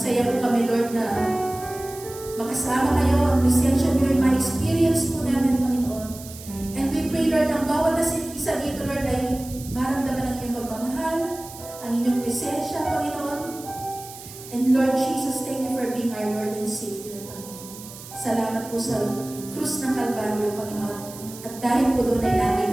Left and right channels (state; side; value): noise; right; hiss, 15 dB below the sound